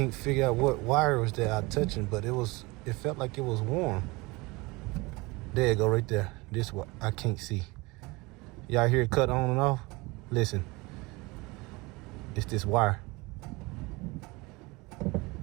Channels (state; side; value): quieter; left; 24.1 dB